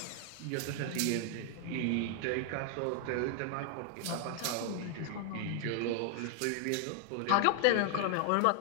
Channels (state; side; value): different; both; correlation 0.00